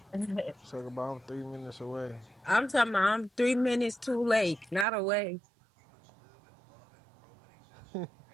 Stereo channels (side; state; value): left; drops out; at 4.9 s